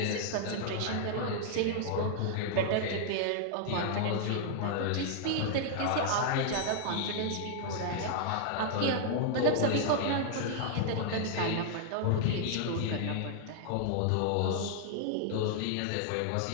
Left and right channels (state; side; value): different; both; correlation -0.01